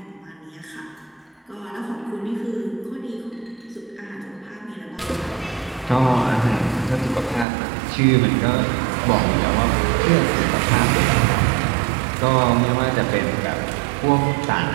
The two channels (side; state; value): left; drops out; at 7.5 s